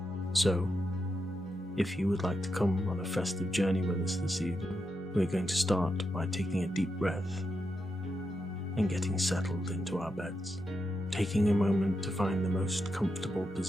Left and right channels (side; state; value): both; normal; correlation 0.85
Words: So, if you would like to come on a festive journey with us this evening, we're going to start by taking a deep breath and getting settled into our beds, taking a moment to find the most comfortable